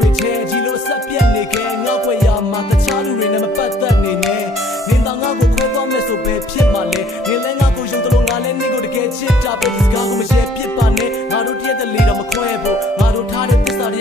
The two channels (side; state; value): both; normal; correlation 0.58